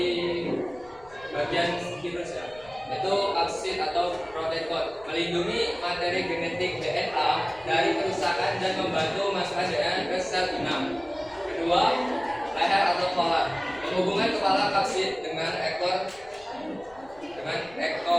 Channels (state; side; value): noise; left; rumble, 25 dB below the sound